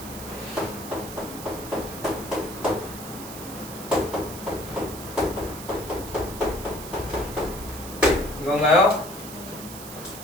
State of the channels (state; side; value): noise; right; hiss, 12 dB below the sound